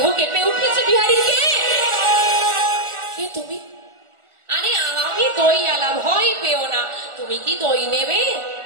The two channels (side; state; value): left; late; 1.4 ms